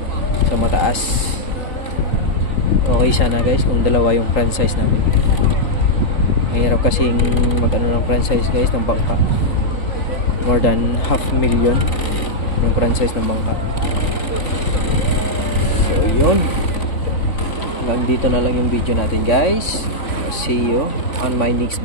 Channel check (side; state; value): right; late; 3.5 ms